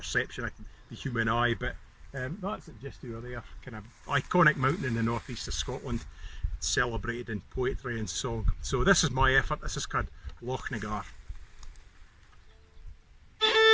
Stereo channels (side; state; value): both; identical; correlation 1.00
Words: of the human eye, but that's it just over there. Kind of iconic mountain in the northeast of Scotland, celebrated in poetry and song. So this is my effort. This is called Loch Nagar.